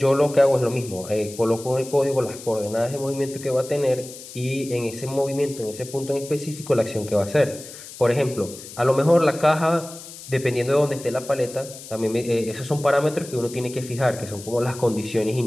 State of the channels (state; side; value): noise; left; hiss, 15 dB below the sound